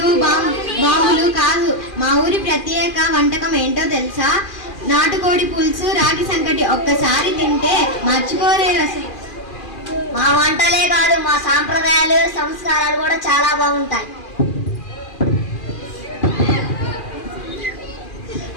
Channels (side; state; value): right; late; 2.4 ms